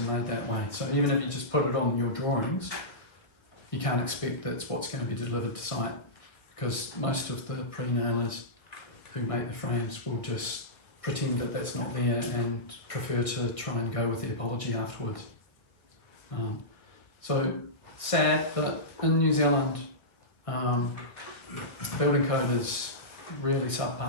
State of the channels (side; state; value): right; late; 1.3 ms